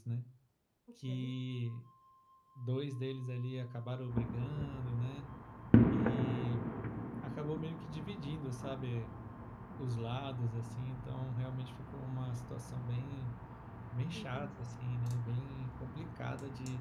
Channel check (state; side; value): identical; both; correlation 1.00